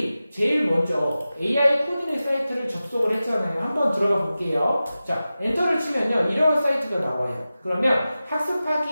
제일 먼저 AI 코딩의 사이트를 접속을 했잖아요. 한번 들어가 볼게요. 자, 엔터를 치면요, 이런 사이트가 나와요. 그러면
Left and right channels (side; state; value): both; inverted; correlation -0.95